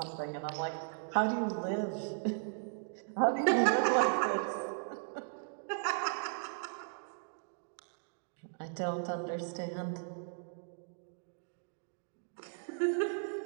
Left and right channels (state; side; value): silent; left; digital silence